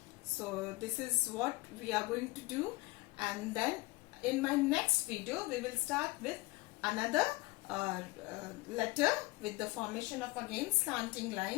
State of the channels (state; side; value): quieter; right; 23.1 dB